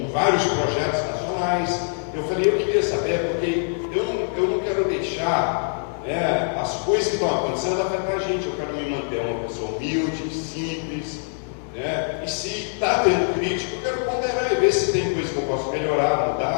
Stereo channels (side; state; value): right; silent; digital silence